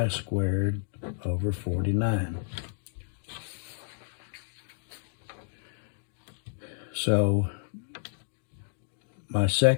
squared over 49. So my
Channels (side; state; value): right; silent; digital silence